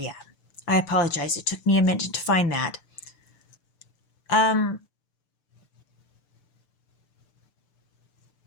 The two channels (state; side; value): late; right; 6.8 ms